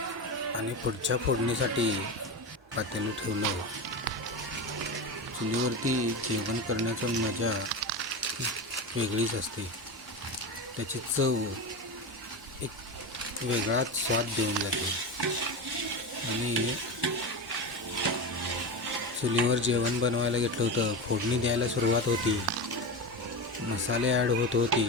आणि पुढच्या फोडणीसाठी पातेलं ठेवलं. चुलीवरती जेवण करण्याचं मजा वेगळीच असते. त्याची चव एक वेगळाच स्वाद देऊन जाते. आणि चुलीवर जेवण बनवायला घेतलं होतं. फोडणी द्यायला सुरुवात होती. मसाले ॲड होत होते.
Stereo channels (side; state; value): both; normal; correlation 0.21